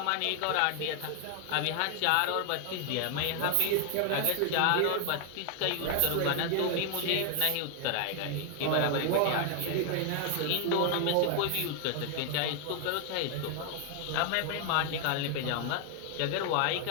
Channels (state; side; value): different; both; correlation 0.00